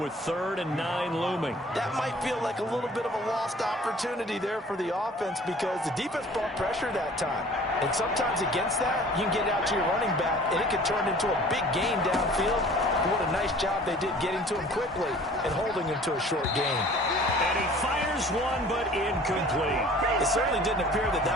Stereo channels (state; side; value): normal; both; correlation 0.49